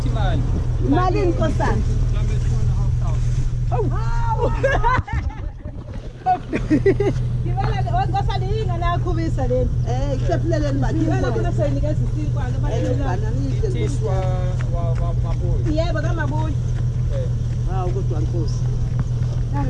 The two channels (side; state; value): both; identical; correlation 1.00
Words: imali. Imali nkosana. Ngibala ngosana yinga nakhubisa leni. Ikusephuleleni mali. Ngibala kuna sayinikeza isinkwana abalelana. Tiswa wa mabuyi. Yebo kamabuyi. Hawu kodwa Nkosi.